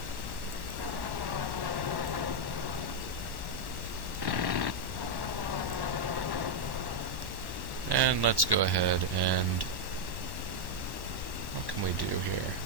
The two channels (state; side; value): late; left; 1.1 ms